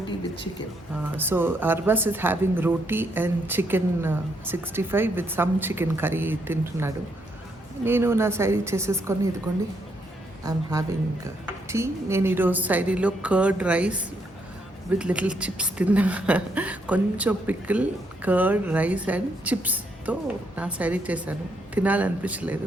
with chicken. So Arbaz is having roti and chicken 65 with some chicken curry తింటున్నాడు. నేను నా సైడ్ చేసేసుకొని ఇదిగోండి ఐఎమ్ హ్యావింగ్ టీ. నేను ఈరోజు సైడీలో curd rice with little chips తిన్నా. కొంచెం పికిల్, కర్డ్ రైస్ అండ్ చిప్స్తో నా సైడీ చేశాను. తినాలనిపించలేదు.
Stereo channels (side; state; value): both; normal; correlation 0.75